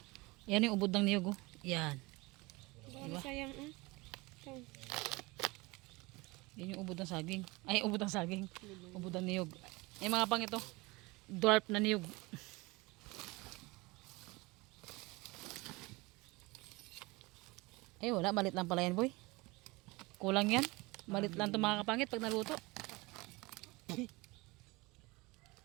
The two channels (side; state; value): left; quieter; 23.6 dB